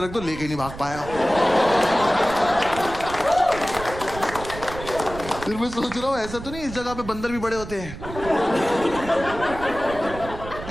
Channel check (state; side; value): noise; right; rumble, 12 dB below the sound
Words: रख दो, लेके नहीं भाग पाया। फिर मैं सोच रहा हूं ऐसा तो नहीं इस जगह पे बंदर भी बड़े होते हैं।